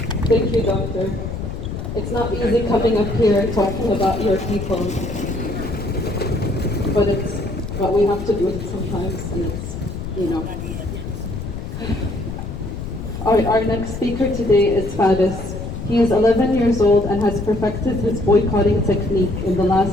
Thank you, Doctor. It's not easy coming up here talking about your people, but we have to do it sometimes, and it's, you know. Our next speaker today is Faris. He is 11 years old and has perfected his boycotting technique in the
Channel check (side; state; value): left; noise; rumble, 7 dB below the sound